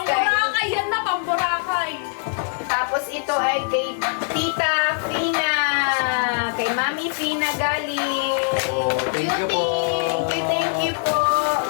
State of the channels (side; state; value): right; silent; digital silence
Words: yan na, pamburakay. tapos ito ay kay Tita Fina. Kay Mami Fina galing. Oh, thank you po. Thank you po.